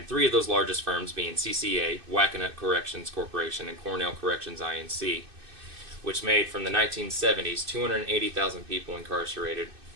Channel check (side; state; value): left; late; 2.6 ms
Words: three of those largest firms being CCA, Wackenhut Corrections Corporation, and Cornell Corrections Inc., which made from the 1970s 280,000 people incarcerated